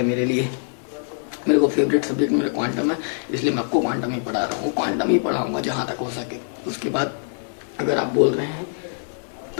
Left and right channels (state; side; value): silent; right; digital silence